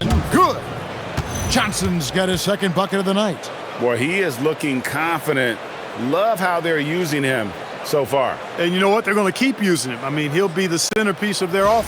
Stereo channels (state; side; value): identical; both; correlation 1.00